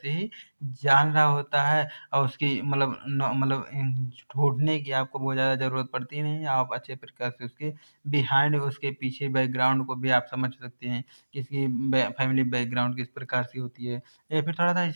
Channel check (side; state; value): both; inverted; correlation -1.00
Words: ही जान रहा होता है और उसकी मतलब ढूंढने की आपको बहुत ज़्यादा ज़रूरत पड़ती नहीं आप अच्छे प्रकार से उसके बिहाइंड उसके पीछे बैकग्राउंड को भी आप समझ सकते हैं कि इसकी फैमिली बैकग्राउंड किस प्रकार से होती है या फिर थोड़ा सा